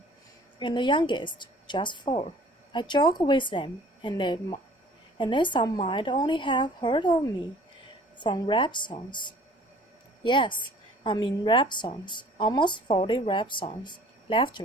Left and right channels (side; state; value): both; normal; correlation 0.51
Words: and the youngest just 4. I joke with them, and they some might only have heard of me from rap songs. Yes, I mean rap songs, almost 40 rap songs.